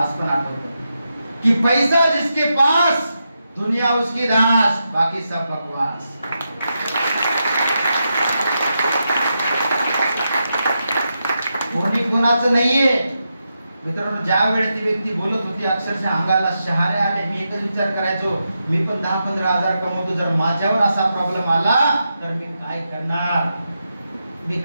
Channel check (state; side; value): inverted; both; correlation -0.86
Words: पण आठवतं की पैसा जिसके पास दुनिया उसकी दास, बाकी सब बकवास. कोणी कोणाचं नाहीये. मित्रांनो, ज्या वेळेस ती व्यक्ती बोलत होती, अक्षरशः अंगाला शहारे आले. मी एकच विचार करायचो, मी पण 10-15 हजार कमवतो, जर माझ्यावर असा प्रॉब्लेम आला तर मी काय करणार, मी